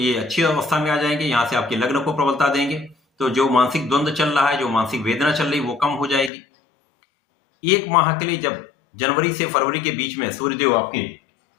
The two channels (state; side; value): drops out; right; at 6.3 s